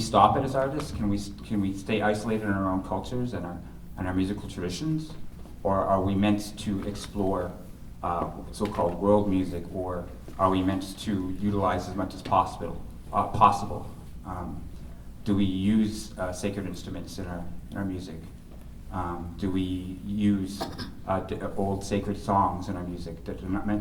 it as artists? Can we stay isolated in our own cultures and our musical traditions? Or are we meant to explore so-called world music, or are we meant to utilize as much as possible? Do we use sacred instruments in our music? Do we use old sacred songs in our music that are not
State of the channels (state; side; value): identical; both; correlation 1.00